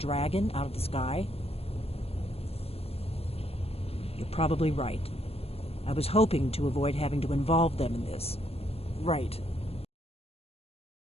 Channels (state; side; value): late; right; 0.29 ms